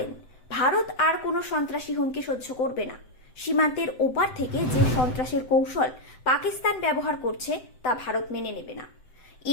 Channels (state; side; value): late; right; 7.8 ms